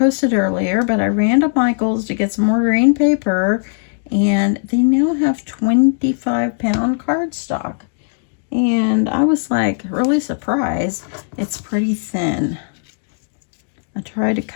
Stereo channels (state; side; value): silent; right; digital silence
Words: earlier, but I ran to Michael's to get some more green paper, and they now have 25-pound cardstock. And I was like really surprised. It's pretty thin. I tried